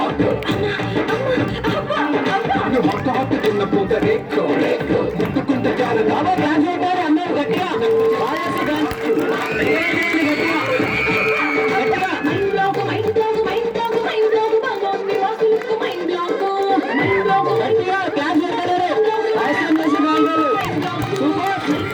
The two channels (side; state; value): both; identical; correlation 1.00